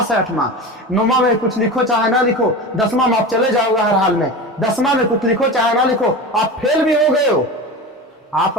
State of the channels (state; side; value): normal; both; correlation 0.28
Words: है 8वां। 9वां में कुछ लिखो चाहे ना लिखो, 10वां में आप चले जाओगे हर हाल में। 10वां में कुछ लिखो चाहे ना लिखो, आप फेल भी हो गए हो, आप